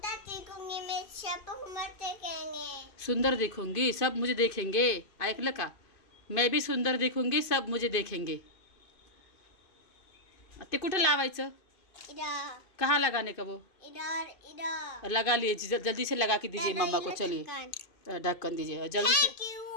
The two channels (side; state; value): right; late; 2.5 ms